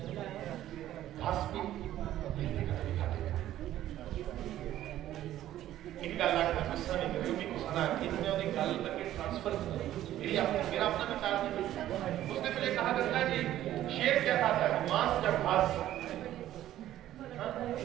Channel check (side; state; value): left; quieter; 13.1 dB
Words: घास भी बिल्ली का भी खा लेंगे। इनका लाखा गुस्सा नहीं करेगी, उनको सुना कि इन्होंने उन्हें गाल करके ट्रांसफर किया। मेरा अपना विचार नहीं। उसने पहले कहा गंगा जी शेर क्या खाता है? मांस या घास?